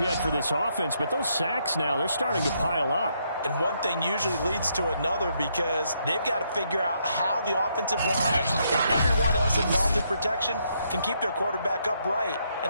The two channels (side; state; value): both; inverted; correlation -0.75